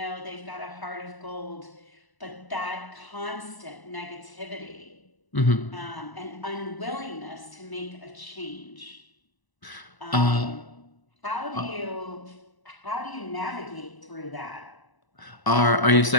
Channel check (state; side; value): late; right; 1.0 ms